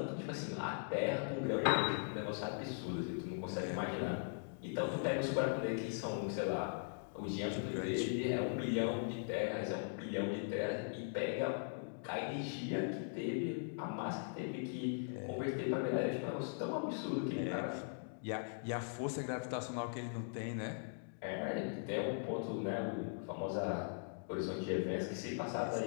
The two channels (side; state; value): right; silent; digital silence